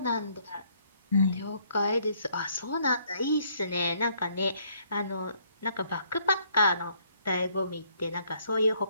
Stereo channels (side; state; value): both; inverted; correlation -0.66